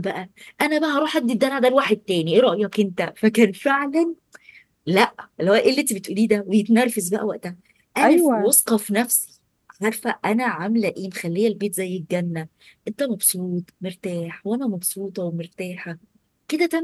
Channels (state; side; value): identical; both; correlation 1.00